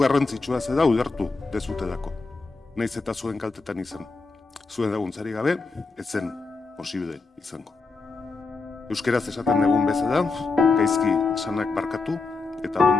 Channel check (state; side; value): quieter; right; 3.9 dB